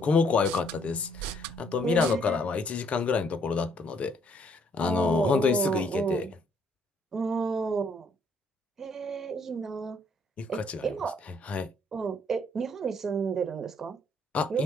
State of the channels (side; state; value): both; normal; correlation 0.66